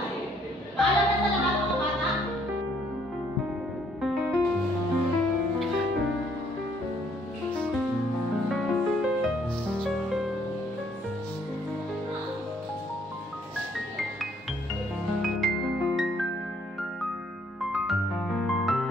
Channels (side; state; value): both; normal; correlation 0.66